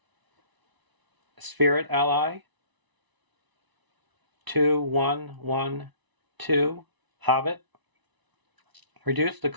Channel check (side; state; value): left; late; 1.0 ms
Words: spirit ally. 2/1/1/2 Hobbit. Reduce the